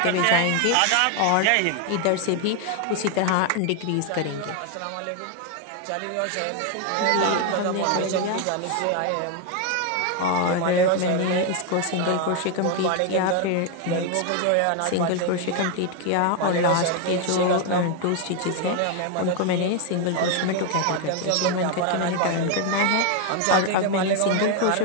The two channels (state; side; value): different; both; correlation 0.01